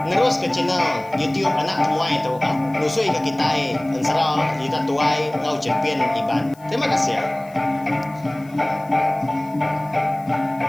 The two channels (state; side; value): noise; left; hiss, 27 dB below the sound